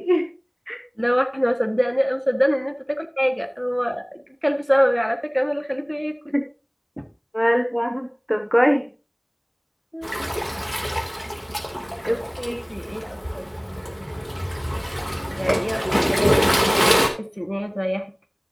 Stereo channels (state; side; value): identical; both; correlation 1.00